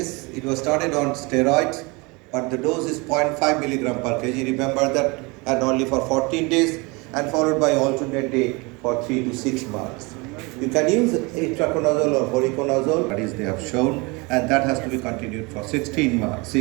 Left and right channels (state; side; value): quieter; left; 27.0 dB